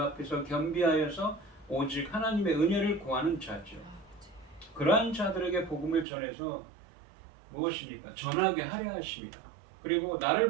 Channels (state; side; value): drops out; left; at 6.1 s